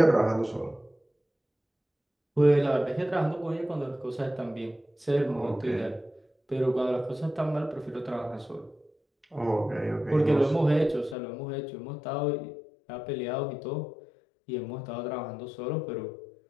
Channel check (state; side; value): drops out; right; at 11.2 s